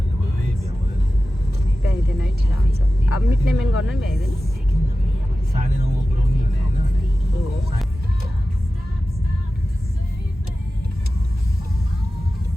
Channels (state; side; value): normal; both; correlation 0.94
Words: अब मिट्ने मेन गर्नु नि भ्याइँदैन